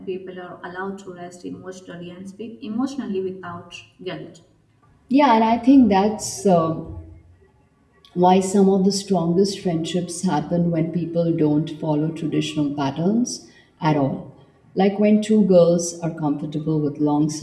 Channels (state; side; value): identical; both; correlation 1.00